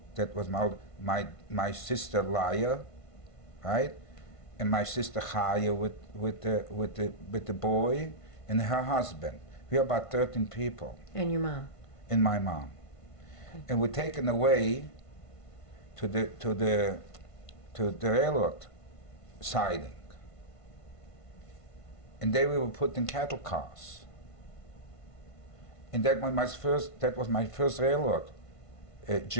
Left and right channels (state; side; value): late; right; 1.5 ms